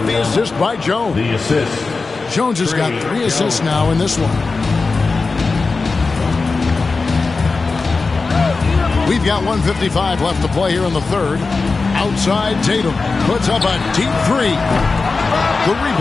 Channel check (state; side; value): quieter; right; 4.1 dB